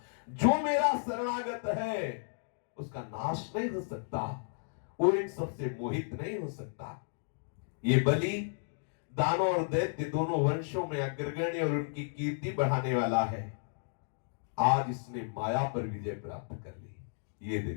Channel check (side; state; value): right; silent; digital silence